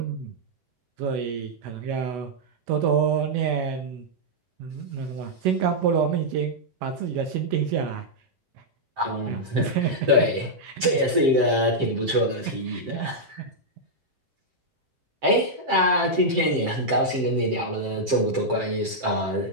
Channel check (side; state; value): left; late; 7.5 ms